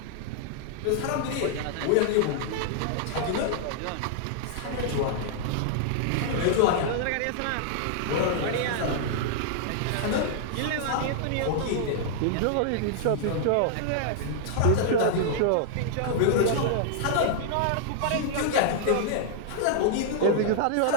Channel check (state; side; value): different; both; correlation -0.01